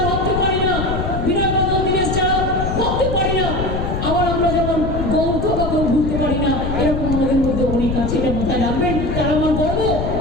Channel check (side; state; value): left; noise; rumble, 3 dB below the sound